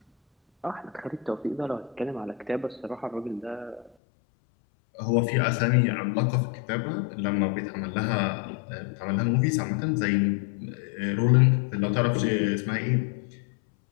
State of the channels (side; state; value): right; drops out; at 3.9 s